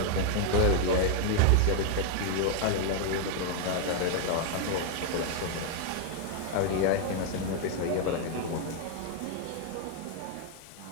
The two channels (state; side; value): different; both; correlation 0.00